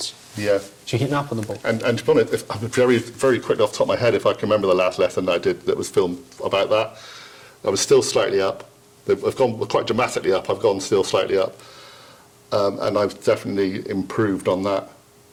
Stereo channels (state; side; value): identical; both; correlation 1.00